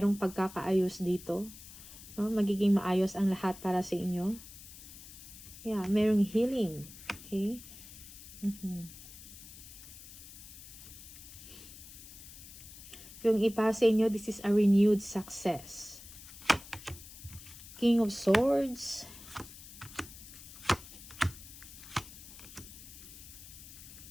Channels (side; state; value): left; noise; hiss, 16 dB below the sound